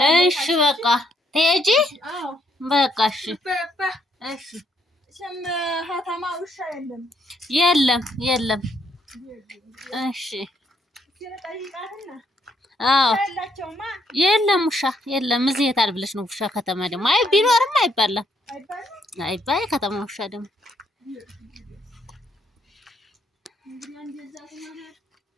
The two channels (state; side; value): normal; both; correlation 0.72